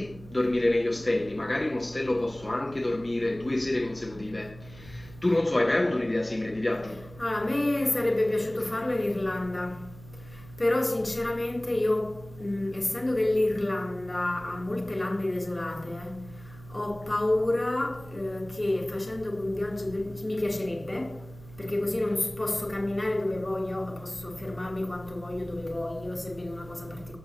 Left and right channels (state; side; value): noise; right; hum, 19 dB below the sound